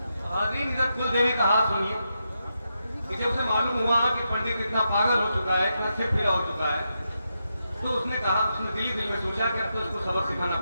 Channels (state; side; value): inverted; both; correlation -0.85